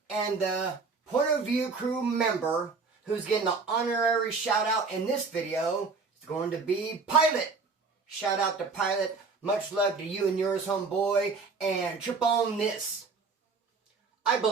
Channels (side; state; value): left; quieter; 4.5 dB